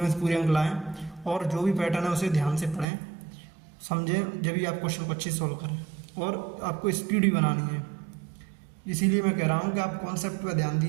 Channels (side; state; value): left; drops out; at 2.9 s